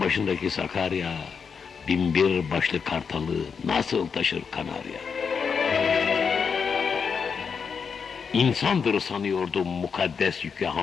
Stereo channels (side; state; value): right; quieter; 6.1 dB